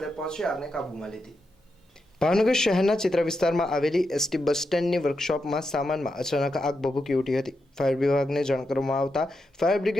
પહોંચી આગને કાબૂમાં લીધી। ભાવનગર શહેરના ચિત્ર વિસ્તારમાં આવેલી એસટી બસ સ્ટેન્ડની વર્કશોપમાં સામાનમાં અચાનક આગ ભભૂકી ઉઠી હતી। ફાયર વિભાગને જાણ કરવામાં આવતા ફાયર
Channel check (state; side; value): normal; both; correlation 0.86